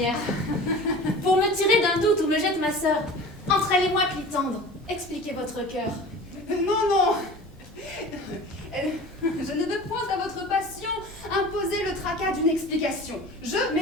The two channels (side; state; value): both; normal; correlation 0.39